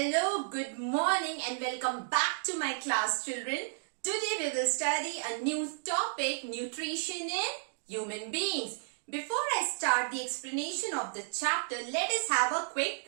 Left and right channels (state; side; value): silent; left; digital silence